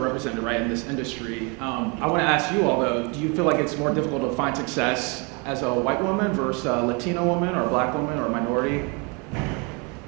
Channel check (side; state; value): left; quieter; 31.6 dB